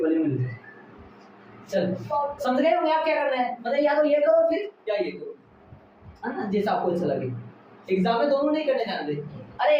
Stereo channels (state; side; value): identical; both; correlation 1.00